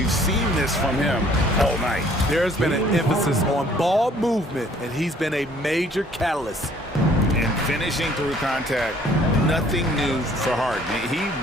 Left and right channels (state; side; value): normal; both; correlation 0.58